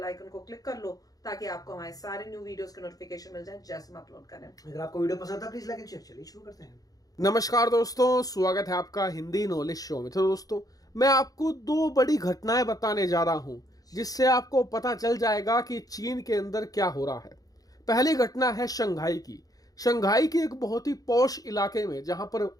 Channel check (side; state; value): right; late; 0.18 ms